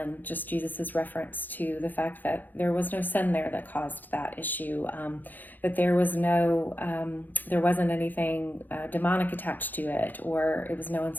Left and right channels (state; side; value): late; right; 0.086 ms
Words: just Jesus's reference to the fact that there was no sin there that caused that issue, that there wasn't anything demonic attached to it, or it was no